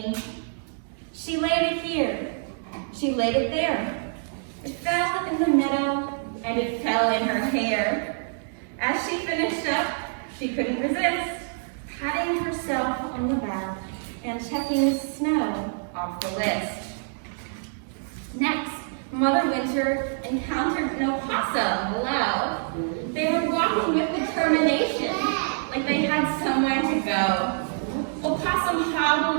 She laid it here. She laid it there. It fell in the meadow, and it fell in her hair. As she finished up, she couldn't resist, patting herself on the back and checking snow off the list. Next, Mother Winter encountered an opossum below. They were walking with determination, like they had somewhere to go. Opossum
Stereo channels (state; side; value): silent; left; digital silence